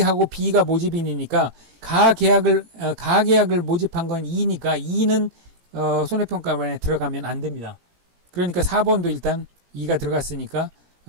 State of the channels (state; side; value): late; left; 17 ms